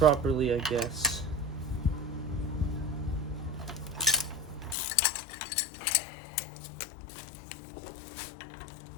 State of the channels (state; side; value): drops out; right; at 4.8 s